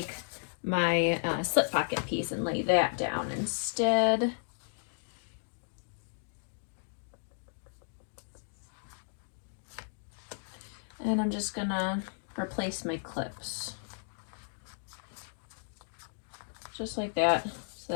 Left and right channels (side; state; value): right; silent; digital silence